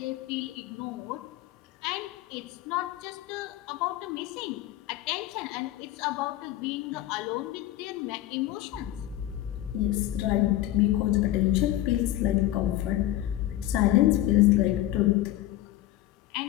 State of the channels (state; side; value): quieter; right; 14.3 dB